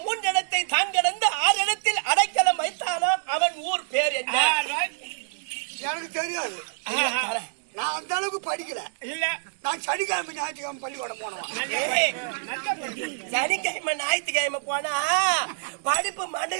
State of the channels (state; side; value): silent; left; 61 dB below the other